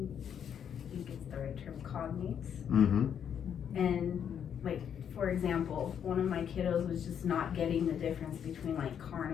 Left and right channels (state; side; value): quieter; right; 8.4 dB